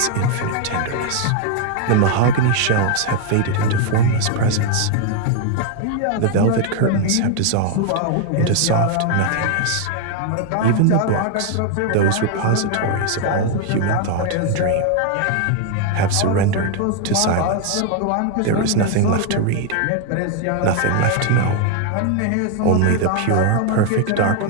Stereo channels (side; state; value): both; different; correlation 0.01